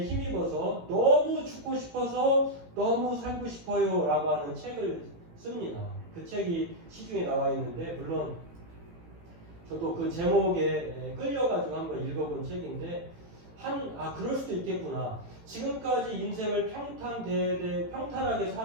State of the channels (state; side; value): late; left; 18 ms